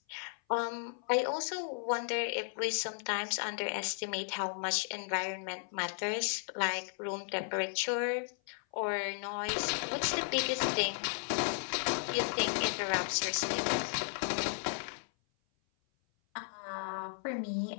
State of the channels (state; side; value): silent; right; 55 dB below the other